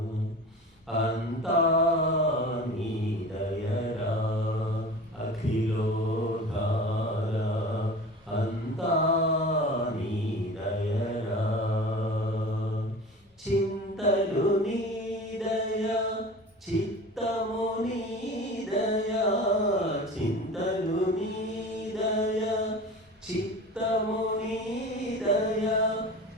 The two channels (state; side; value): normal; both; correlation 0.37